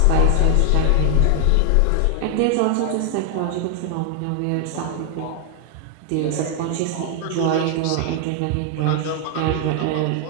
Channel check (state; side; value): different; both; correlation 0.00